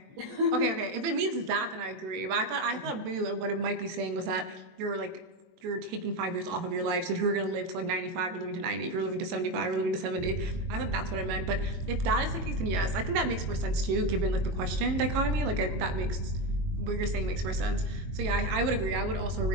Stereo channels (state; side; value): late; left; 22 ms